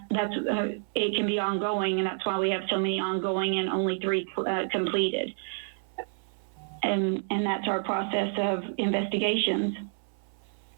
it can be ongoing, and that's why we have so many ongoing and only 3 completed. And that's our process of investigations.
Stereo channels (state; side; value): silent; left; 59 dB below the other